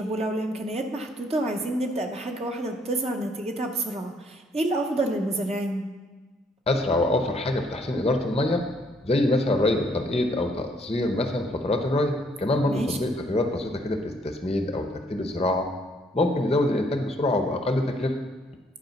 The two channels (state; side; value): normal; both; correlation 0.67